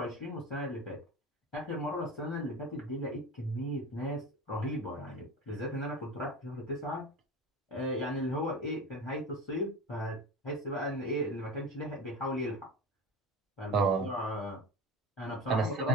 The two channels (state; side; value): normal; both; correlation 0.30